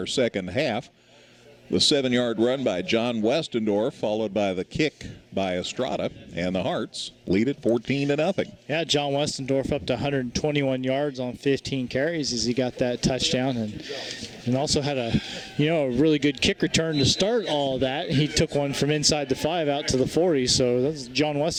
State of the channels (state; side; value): identical; both; correlation 1.00